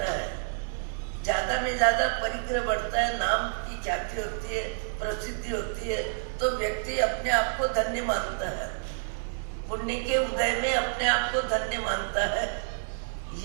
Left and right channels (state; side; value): silent; left; digital silence